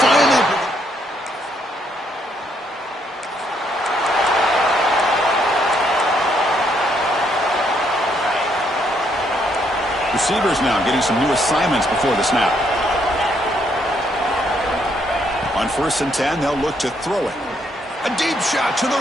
finally... Receivers now getting some new assignments before the snap. On 1st and 10, they'll look to throw it. A deep shot to the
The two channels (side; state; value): both; normal; correlation 0.72